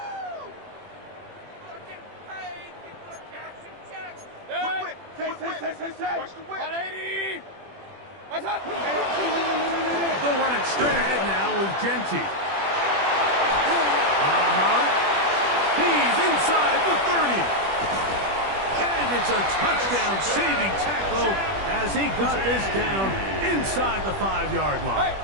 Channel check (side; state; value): left; late; 21 ms